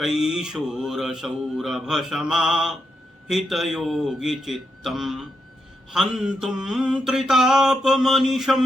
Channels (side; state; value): both; normal; correlation 0.83